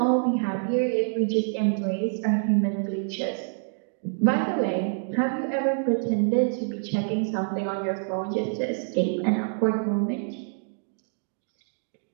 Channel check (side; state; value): left; silent; digital silence